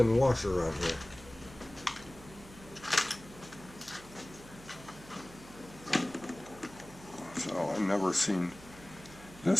washer on here. So I've never seen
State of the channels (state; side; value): noise; right; hum, 18 dB below the sound